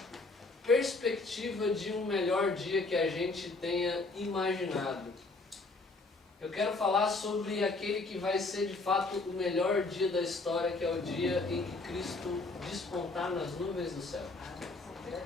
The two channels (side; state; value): right; quieter; 3.5 dB